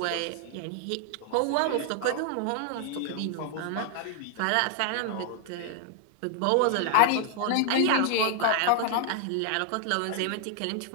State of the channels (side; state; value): both; different; correlation 0.00